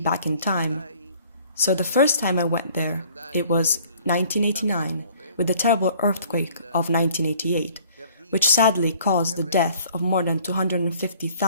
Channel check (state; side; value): inverted; both; correlation -0.55